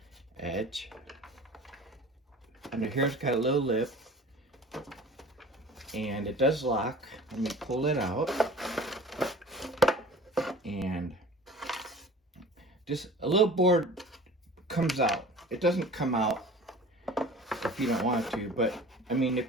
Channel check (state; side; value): normal; both; correlation 0.42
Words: edge. Under here's got a little lip. And it does lock. Let me pull it out. And just a little board comes out. It doesn't come out if you don't want to, but I mean,